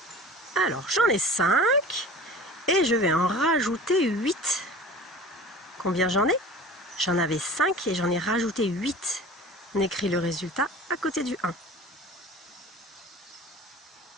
Alors, j'en ai 5 et je vais en rajouter 8. Combien j'en ai? J'en avais 5 et j'en ai rajouté 8. On écrit le résultat à côté du 1.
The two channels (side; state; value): both; normal; correlation 0.40